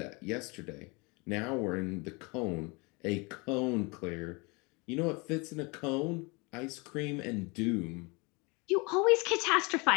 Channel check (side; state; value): right; quieter; 28.4 dB